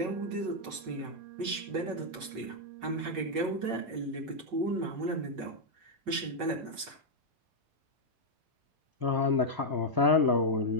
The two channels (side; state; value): left; late; 5.4 ms